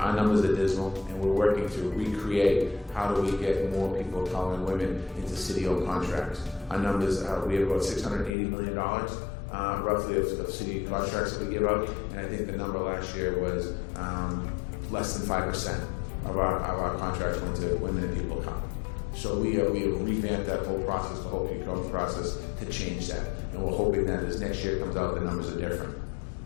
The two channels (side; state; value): right; drops out; at 8.3 s